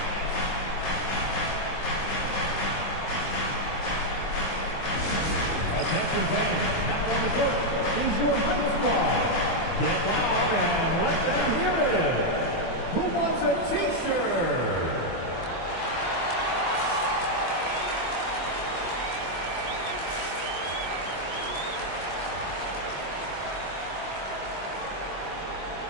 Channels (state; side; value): late; right; 24 ms